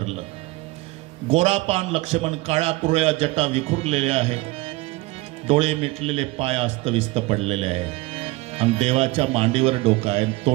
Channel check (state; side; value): quieter; left; 21.2 dB